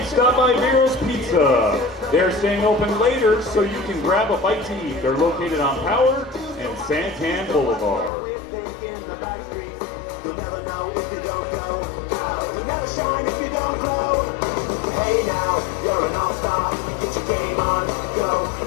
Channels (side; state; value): right; drops out; at 8.1 s